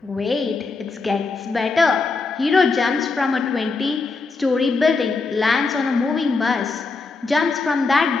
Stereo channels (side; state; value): right; quieter; 4.1 dB